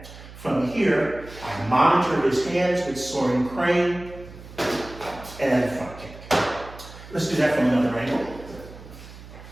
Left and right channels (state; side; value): noise; right; hum, 17 dB below the sound